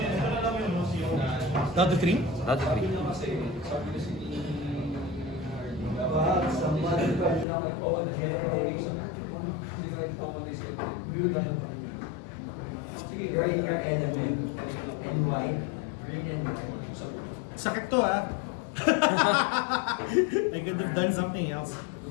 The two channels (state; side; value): drops out; right; at 7.5 s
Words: Down to 3? Not 3. Sakit to ah. I could have done something else.